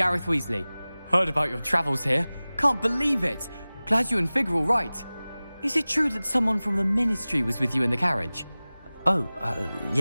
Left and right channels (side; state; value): both; inverted; correlation -0.98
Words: Weasley. Heard about your travels here. Can't believe it. Glad you and Fig are all right. Is it true that someone from the ministry was with you in the carriage? Oh,